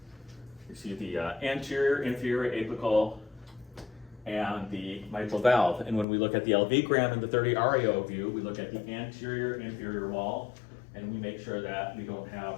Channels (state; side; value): drops out; right; at 6.1 s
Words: You see the anterior, inferior, apical, and the mitral valve. And when we look at the LV gram in the 30 RAO view, we look at the anterior, inferior wall, and we make sure that we don't